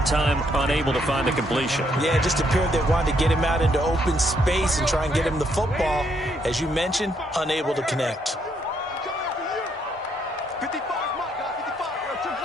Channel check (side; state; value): both; normal; correlation 0.73